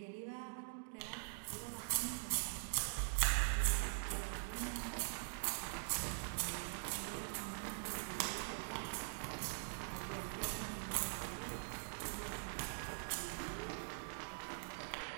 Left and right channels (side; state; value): left; silent; digital silence